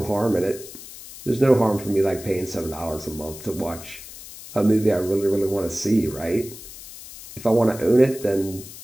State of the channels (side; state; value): left; noise; hiss, 15 dB below the sound